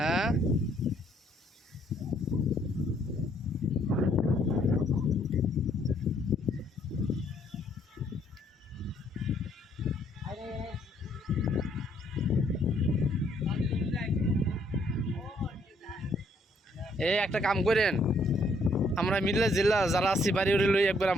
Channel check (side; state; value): both; normal; correlation 0.68